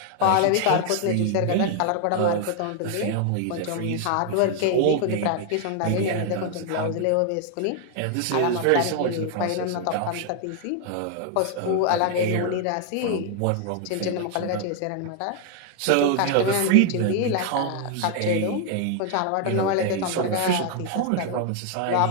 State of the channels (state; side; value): different; both; correlation 0.00